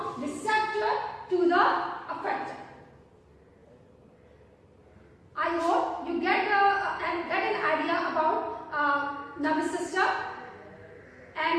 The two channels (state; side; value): identical; both; correlation 1.00